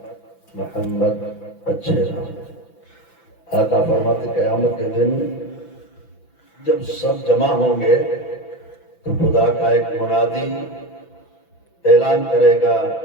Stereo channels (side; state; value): right; late; 6.0 ms